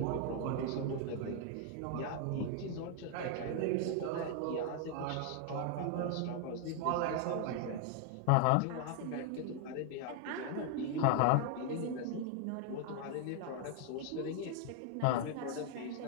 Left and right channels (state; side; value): different; both; correlation 0.00